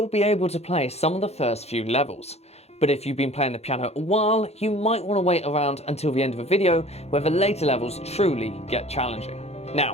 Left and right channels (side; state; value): right; late; 0.31 ms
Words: be able to play some of the first few levels. But if you've been playing the piano a while, you might want to wait around until the end of the video where the later levels truly get challenging.